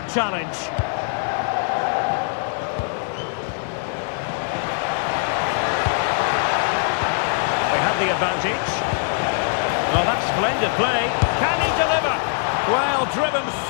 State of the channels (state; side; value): silent; right; digital silence